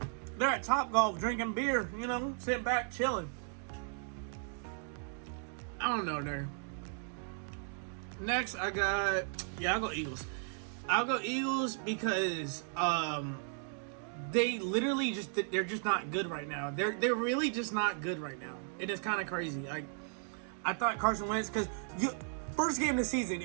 They're at Topgolf drinking beer, you know, sitting back chilling. I don't know there. Next, I'll go Eagles. I'll go Eagles because they literally they're just not good right now. They're really just not good right now. It is kind of crazy. Like, I thought Carson Wentz, because first game of the season,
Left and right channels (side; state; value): left; silent; 54 dB below the other